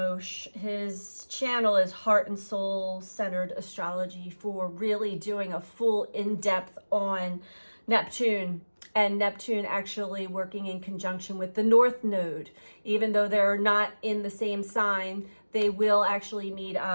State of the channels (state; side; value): inverted; both; correlation -1.00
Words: His channel is Heart and Soul Centered Astrology, for really doing a full in-depth on Neptune. And Neptune actually working in conjunction with the North Node. Even though they're not in the same sign, they will actually meet